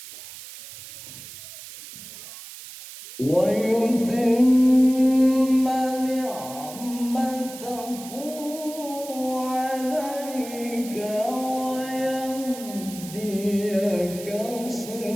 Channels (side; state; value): right; noise; hiss, 14 dB below the sound